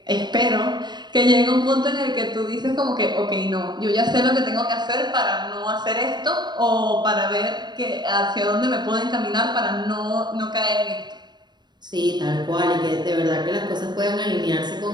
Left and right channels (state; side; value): late; left; 0.21 ms